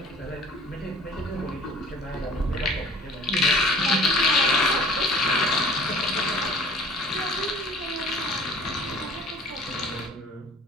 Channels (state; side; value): normal; both; correlation 0.49